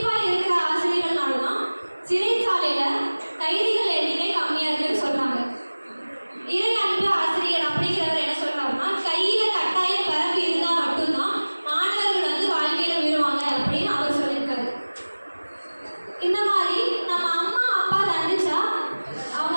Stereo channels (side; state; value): both; inverted; correlation -1.00